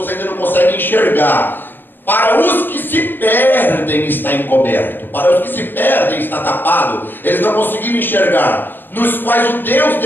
ainda não conseguem enxergar, para os que se perdem está encoberto, para os que se perdem está tapado, eles não conseguiram enxergar, nos quais o Deus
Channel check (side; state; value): right; late; 0.095 ms